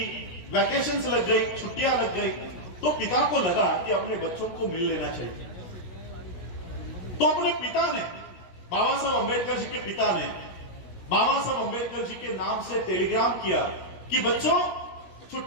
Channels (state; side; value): late; right; 16 ms